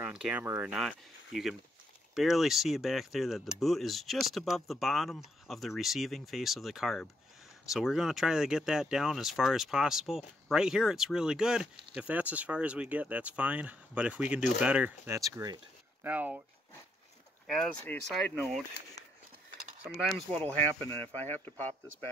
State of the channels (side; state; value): both; normal; correlation 0.76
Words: camera or not. You can barely see back there that the boot is just above the bottom of the receiving face of the carb. So we're going to try to get that down as far as possible. Right here it's really good. If that's as far as we get, that's fine. But if we can do better, that's great. Now, as a side note, sometimes what will happen, and if I have to pop this